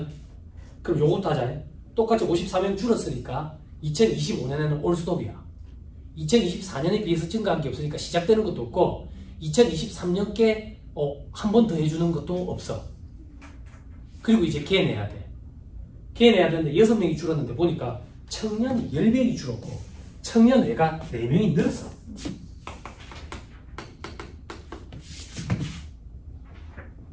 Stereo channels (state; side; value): identical; both; correlation 1.00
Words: 그럼 요것도 하자. 똑같이 54명 줄었으니까 2025년에는 올스톱이야. 2024년에 비해서 증가한 게 없으니까 시작되는 것도 없고 2023년께 한 번 더 해주는 것도 없어. 그리고 이제 개내야 돼. 개내야 되는데 6명이 줄었는데 보니까 청년이 10명이 줄었고 청년 외가 4명이 늘었어.